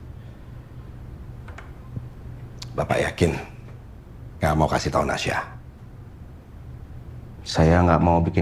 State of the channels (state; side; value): identical; both; correlation 1.00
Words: Bapak yakin nggak mau kasih tahu Nasya? Saya nggak mau